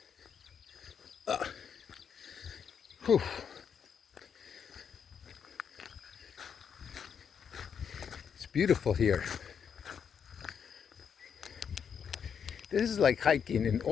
Whew. It's beautiful here. This is like hiking in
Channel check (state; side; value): quieter; right; 7.4 dB